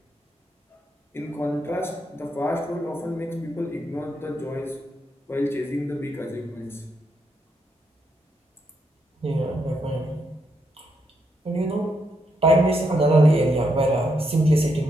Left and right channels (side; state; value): both; normal; correlation 0.79